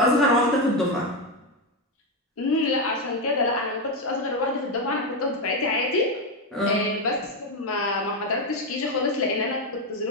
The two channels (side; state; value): both; normal; correlation 0.08